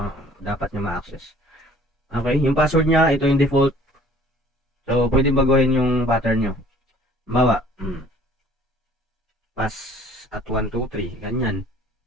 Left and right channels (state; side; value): normal; both; correlation 0.53